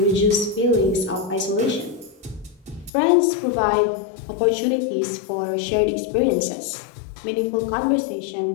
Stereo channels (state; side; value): drops out; right; at 2.9 s